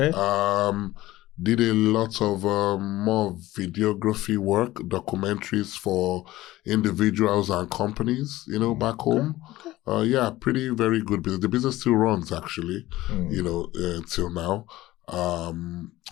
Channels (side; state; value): right; quieter; 16.8 dB